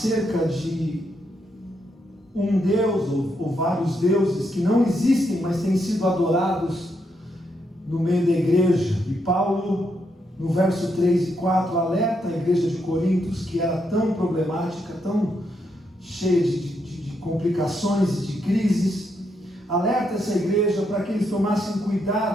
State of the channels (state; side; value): normal; both; correlation 0.79